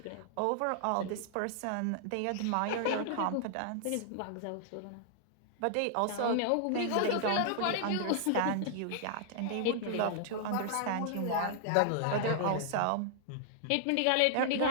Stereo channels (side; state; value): both; different; correlation 0.00